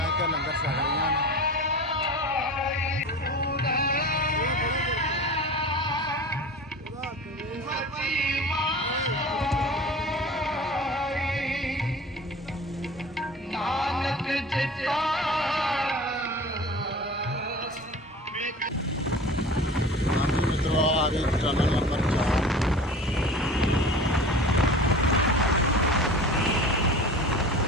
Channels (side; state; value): both; normal; correlation 0.38